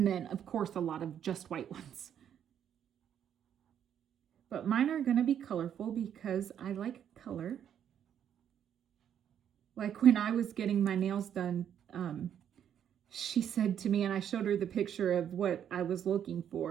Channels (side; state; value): left; quieter; 9.3 dB